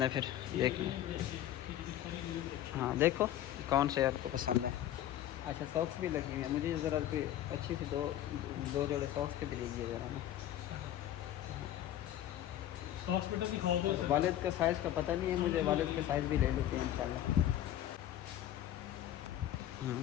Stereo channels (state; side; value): quieter; right; 12.3 dB